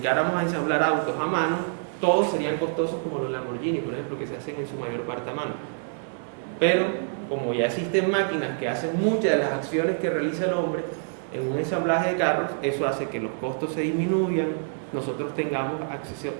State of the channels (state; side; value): silent; left; 58 dB below the other